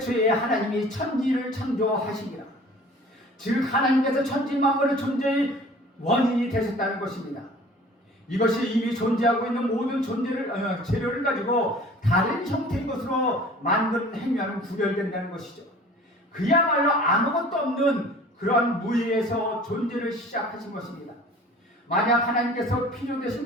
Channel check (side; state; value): both; normal; correlation 0.47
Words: 하나님이 천지를 창조하시니라. 즉 하나님께서 천지 만물의 존재의 원인이 되셨다는 것입니다. 이것이 이미 존재하고 있는 모든 재료를 가지고 다른 형태의 것으로 만든 행위와는 구별된다는 것이죠. 그야말로 아무것도 없는 그러한 무의에서 존재를 시작하신 것입니다. 만약 하나님께서